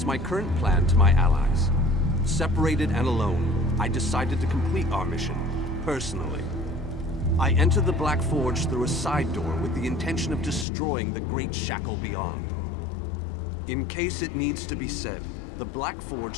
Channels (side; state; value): right; drops out; at 10.7 s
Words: my current plan to my allies. Separated and alone, I decided to complete our mission, personally. I entered the Black Forge through a side door with the intention of destroying the Great Shackle beyond. In case it needs to be said, the Black